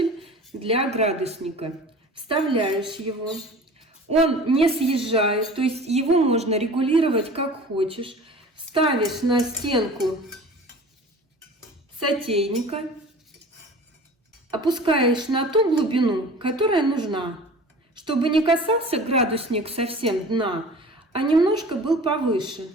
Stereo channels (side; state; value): both; normal; correlation 0.41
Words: для градусника. Вставляешь его. Он не съезжает, то есть его можно регулировать как хочешь. Ставишь на стенку сотейника. Опускаешь на ту глубину, которая нужна, чтобы не касался градусник совсем дна, а немножко был повыше.